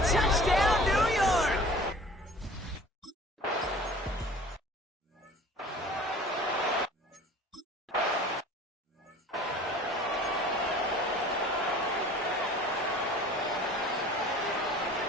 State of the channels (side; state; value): both; normal; correlation 0.45